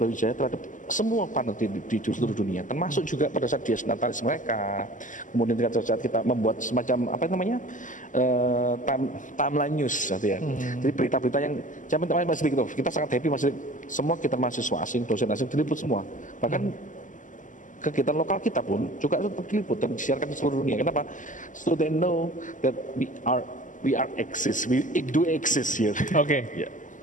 Brawijaya terhadap semua partner di seluruh dunia, termasuk juga pada saat dia natalis mereka. Kemudian pada saat kita membuat semacam timeline news gitu ya. Jadi berita-berita yang saya minta Mas Dik, kita sangat happy Mas Dik. Semua kita mahasiswa asing, dosen asing diliput semua. Bahkan kegiatan lokal kita pun juga tetap diliput dan disiarkan di seluruh dunia. Kenapa? So they know that we do exist here. Oke. Yeah.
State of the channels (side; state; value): right; late; 0.37 ms